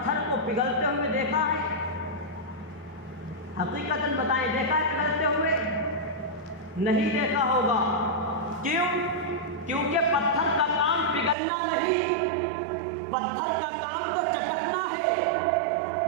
کو پگھلتے ہوئے دیکھا ہے؟ حقیقتاً بتائیں، دیکھا ہے پگھلتے ہوئے؟ نہیں دیکھا ہوگا۔ کیوں؟ کیونکہ پتھر کا کام پگھلنا نہیں، پتھر کا کام تو چٹکنا ہے،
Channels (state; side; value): drops out; left; at 11.4 s